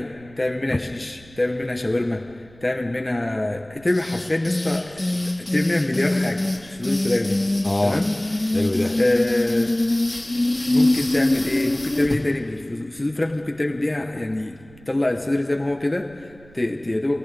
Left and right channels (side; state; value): right; noise; rumble, 24 dB below the sound